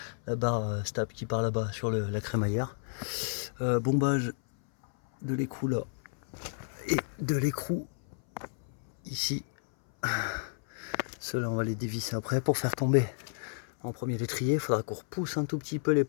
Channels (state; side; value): silent; right; 57 dB below the other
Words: barre stable qui part là-bas sur la crémaillère. Bombage de l'écrou là et de l'écrou ici. Ceux-là on va les dévisser après pour faire tomber en premier l'étrier. Il faudra qu'on repousse un tout petit peu les